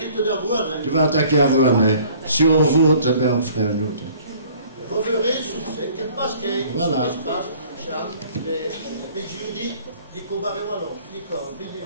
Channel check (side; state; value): both; inverted; correlation -0.53